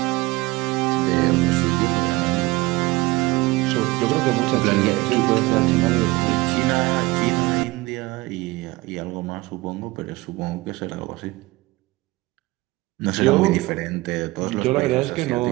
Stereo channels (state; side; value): quieter; left; 21.0 dB